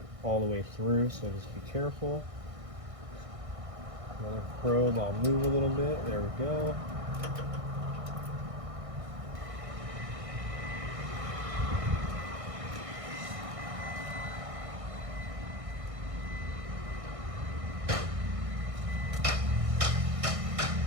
all the way through, so just be careful. Another probe, I'll move a little bit. There we go.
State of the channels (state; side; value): late; left; 1.6 ms